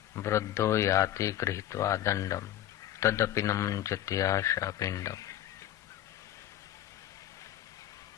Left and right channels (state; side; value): quieter; right; 12.5 dB